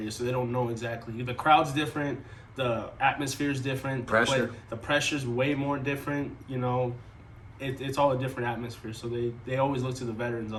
so they don't know exactly. The crowd's different. The atmosphere is different. The pressure's way more different. It's all a different atmosphere. So they always look to the veterans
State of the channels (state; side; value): identical; both; correlation 1.00